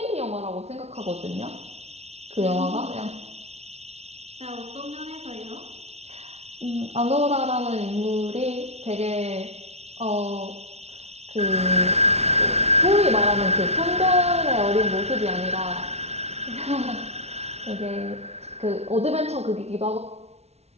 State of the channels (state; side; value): late; left; 0.31 ms